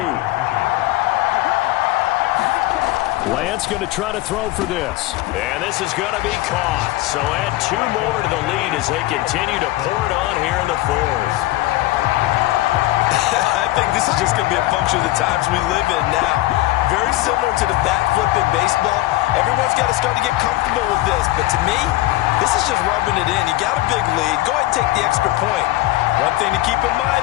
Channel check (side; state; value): right; quieter; 17.4 dB